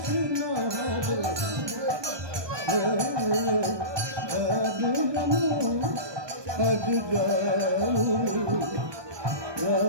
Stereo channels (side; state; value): left; late; 1.2 ms